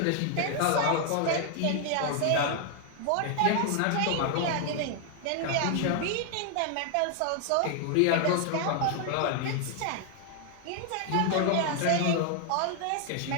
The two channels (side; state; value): both; different; correlation 0.00